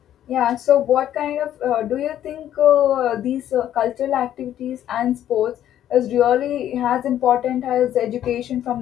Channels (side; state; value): right; quieter; 11.4 dB